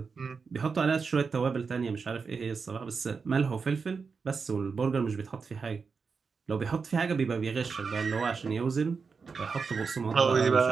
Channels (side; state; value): left; quieter; 5.2 dB